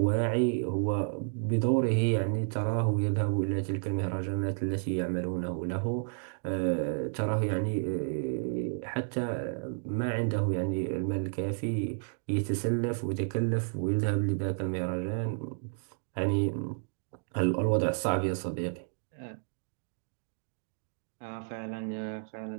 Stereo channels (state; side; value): silent; left; digital silence